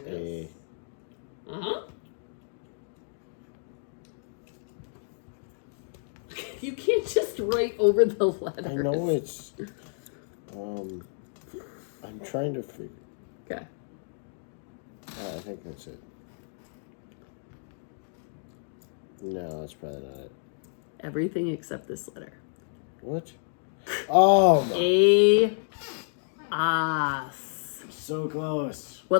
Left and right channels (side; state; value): right; silent; digital silence